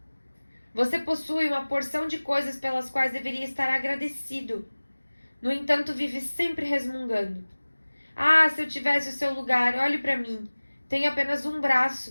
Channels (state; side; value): inverted; both; correlation -1.00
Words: Você possui uma porção de coisas pelas quais deveria estar agradecido. No entanto, vive sempre resmungando. Ah, se eu tivesse o seu lugar, olhe para mim. Tenho apenas um